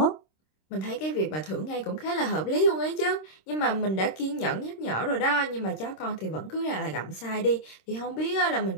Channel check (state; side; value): late; right; 26 ms